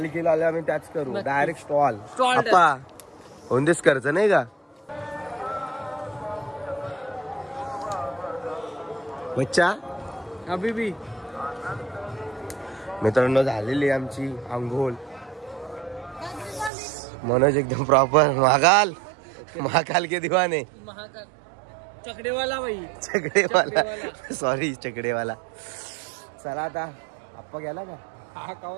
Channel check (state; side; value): drops out; left; at 16.7 s